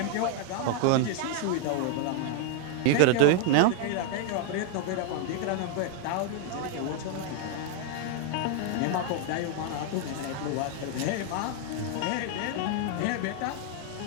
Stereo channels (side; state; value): both; different; correlation 0.00